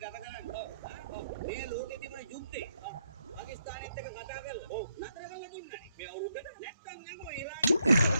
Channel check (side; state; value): both; inverted; correlation -0.78